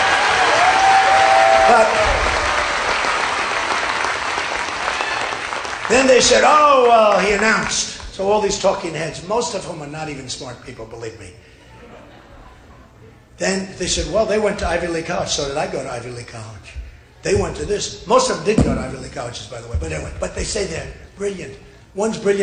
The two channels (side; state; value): both; identical; correlation 1.00